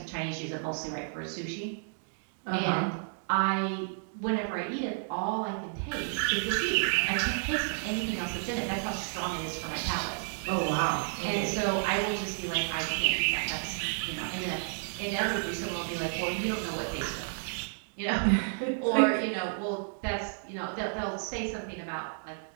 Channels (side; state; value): left; silent; digital silence